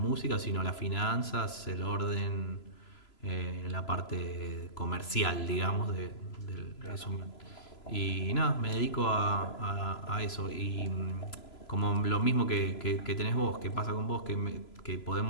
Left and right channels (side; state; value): right; late; 3.0 ms